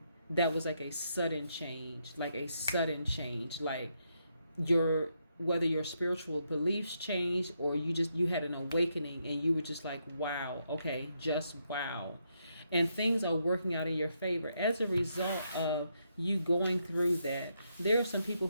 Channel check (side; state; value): both; inverted; correlation -0.79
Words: That was like a sudden change, like whether your spiritual beliefs changed or you had an awakening and you were just like, wow, okay, just wow. And things are working out in your favor. As a result of you going through that, there are some people